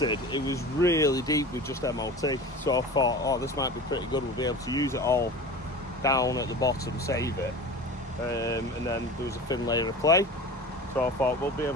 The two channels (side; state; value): both; normal; correlation 0.34